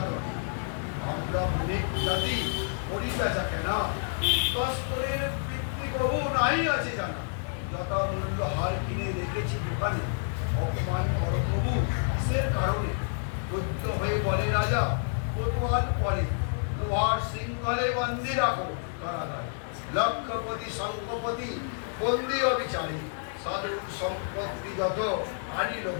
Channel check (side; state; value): right; silent; digital silence